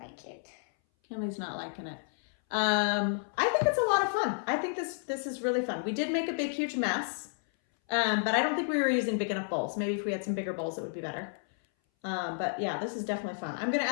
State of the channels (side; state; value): right; silent; 57 dB below the other